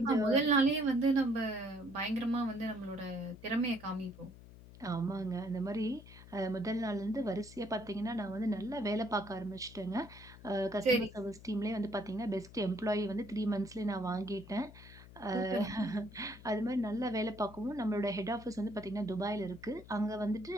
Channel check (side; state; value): left; noise; hum, 18 dB below the sound